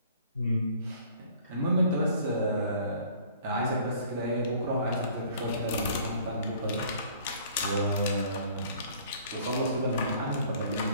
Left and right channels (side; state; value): both; inverted; correlation -0.54